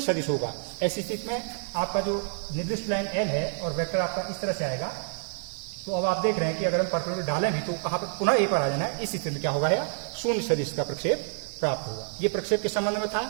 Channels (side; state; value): left; silent; digital silence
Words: सदिश होगा। ऐसी स्थिति में आपका जो निर्दिष्ट लाइन एल है और वेक्टर आपका इस तरह से आएगा। तो अब आप देख रहे हैं कि अगर हम परपेंडिकुलर डालें भी तो कहाँ पर पुनः ए पर आ जाना है। इस स्थिति में क्या होगा, शून्य सदिश का प्रक्षेप प्राप्त होगा। ये प्रक्षेप के संबंध में था।